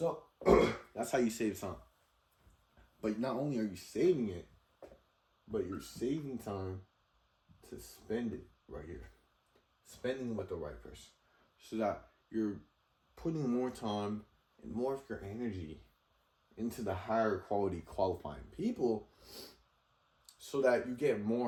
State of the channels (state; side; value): identical; both; correlation 1.00